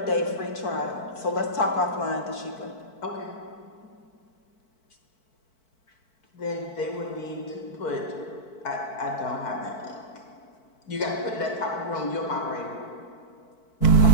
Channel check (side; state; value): right; late; 4.5 ms